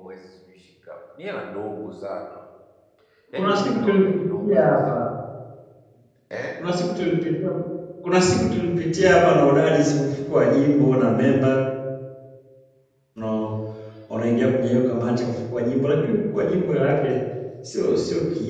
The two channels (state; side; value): identical; both; correlation 1.00